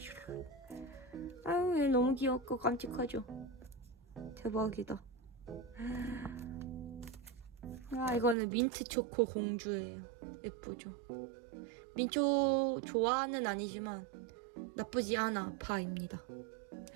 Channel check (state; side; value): drops out; left; at 8.3 s